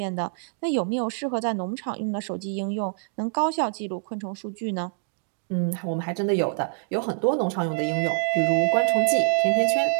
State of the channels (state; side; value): silent; left; digital silence